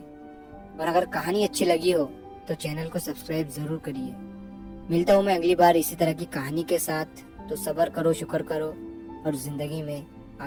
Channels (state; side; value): identical; both; correlation 1.00